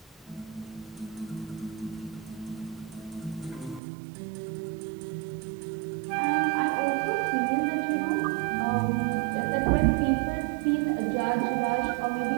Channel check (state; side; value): drops out; left; at 3.8 s